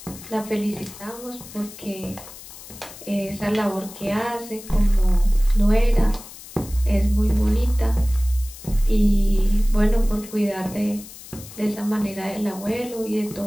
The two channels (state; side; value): noise; left; hiss, 16 dB below the sound